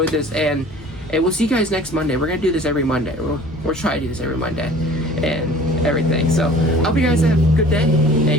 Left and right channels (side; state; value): both; normal; correlation 0.47